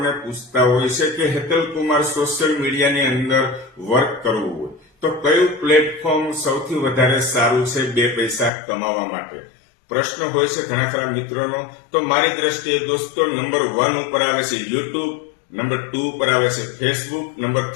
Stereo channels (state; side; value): drops out; right; at 8.5 s